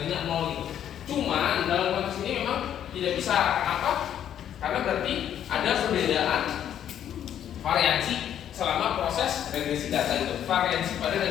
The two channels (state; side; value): quieter; right; 10.1 dB